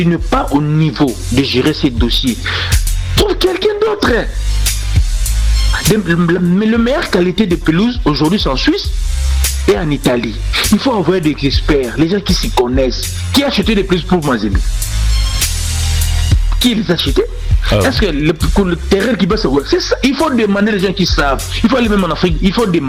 n'es pas au niveau de gérer ces dossiers, trouve quelqu'un d'autre. Mais la meilleure qualité de pelouse aujourd'hui c'est en Suisse et en Italie. Il faut avoir des experts, les gens qui s'y connaissent, qui achètent des pelouses pour Mazembe. Qui les a achetés? Est-ce que le terrain qui va se voir, c'est ça? Il faut demander les gens qui savent. Il faut aller même en Afrique, il faut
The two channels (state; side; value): identical; both; correlation 1.00